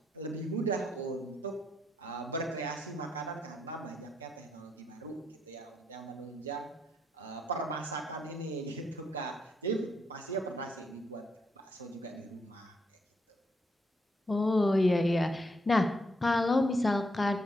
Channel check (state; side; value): normal; both; correlation 0.76